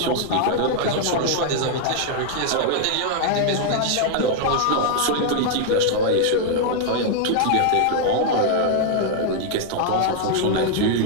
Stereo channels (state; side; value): different; both; correlation 0.00